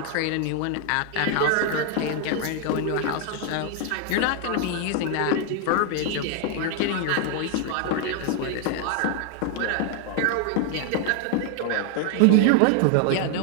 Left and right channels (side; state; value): both; different; correlation 0.00